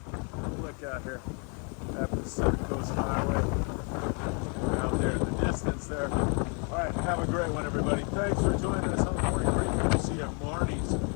Look out here at the Pacific Coast Highway out there in the distance there. All right, have a great one, everybody. Thanks for joining us on the morning briefing. We'll see you at Marnie's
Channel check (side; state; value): right; quieter; 37.2 dB